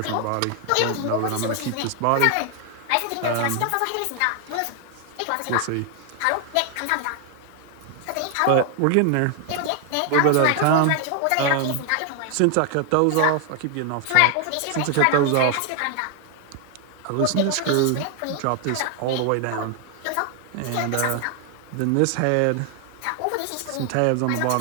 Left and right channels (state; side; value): different; both; correlation 0.00